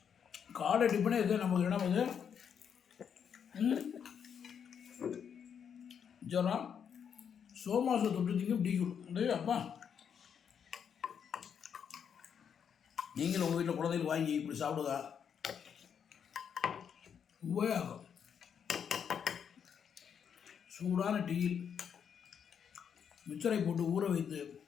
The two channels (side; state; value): right; quieter; 7.7 dB